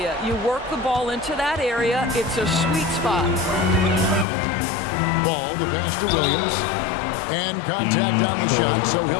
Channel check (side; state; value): right; drops out; at 4.2 s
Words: You work the ball into that area. It's a sweet spot. Ball, the pass to Williams. And contact on the shot, so